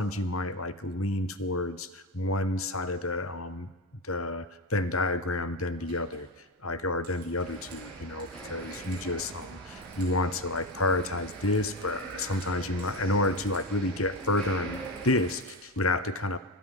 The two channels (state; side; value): normal; both; correlation 0.18